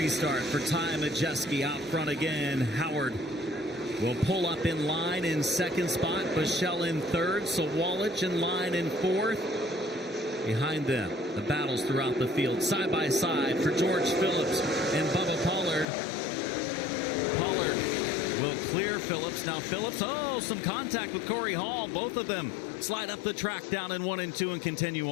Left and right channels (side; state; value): right; drops out; at 15.9 s